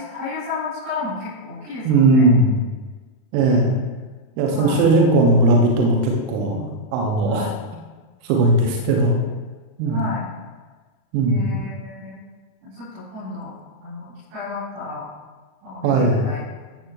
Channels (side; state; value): left; late; 38 ms